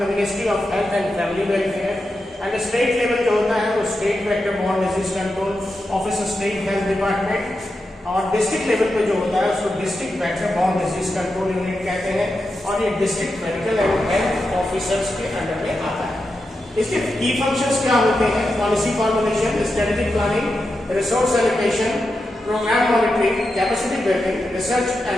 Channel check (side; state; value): both; normal; correlation 0.88